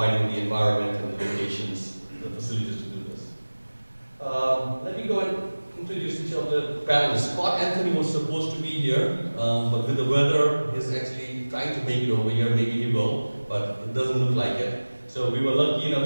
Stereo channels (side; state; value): both; inverted; correlation -1.00